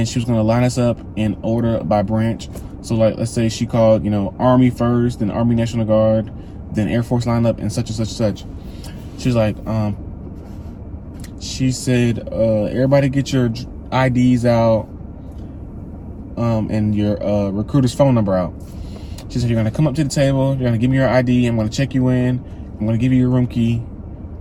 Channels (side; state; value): both; identical; correlation 1.00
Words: she was going to line us up in order by branch. So like, let's say she called, Army first, then Army National Guard, then Air Force line up, and such and such and such. She was like, she said, everybody get your IDs out, and your recruiter's phone number out. She said, you're gonna come up to the table, you're gonna give me your ID, I'm gonna check you in, I'm gonna give you your room key,